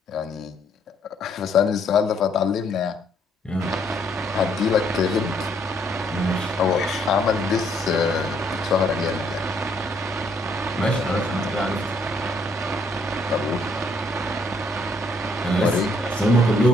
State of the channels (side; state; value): both; normal; correlation 0.68